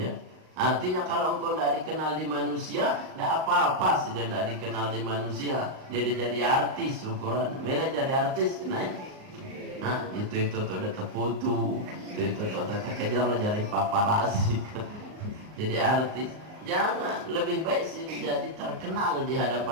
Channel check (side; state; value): left; late; 38 ms